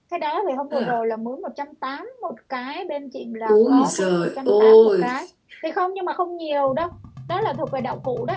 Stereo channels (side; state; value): both; identical; correlation 1.00